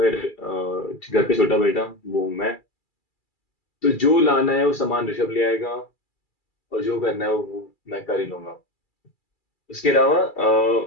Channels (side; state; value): right; late; 2.3 ms